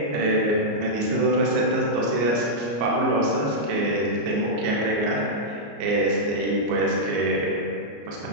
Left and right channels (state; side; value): late; left; 34 ms